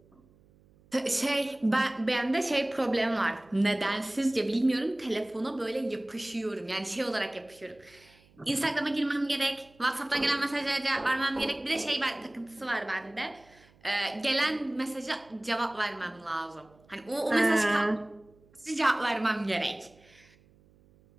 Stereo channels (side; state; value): right; noise; hum, 29 dB below the sound